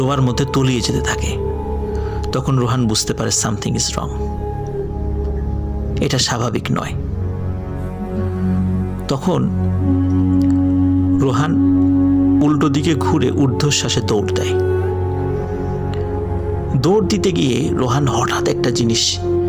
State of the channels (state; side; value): identical; both; correlation 1.00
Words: মধ্যে তলিয়ে যেতে থাকে। তখন রোহান বুঝতে পারে সামথিং ইজ রং, এটা স্বাভাবিক নয়। তখন রোহান উল্টো দিকে ঘুরে ঊর্ধ্বশ্বাসে দৌড় দেয়। দৌড় দিতে গিয়ে রোহান হঠাৎ একটা জিনিস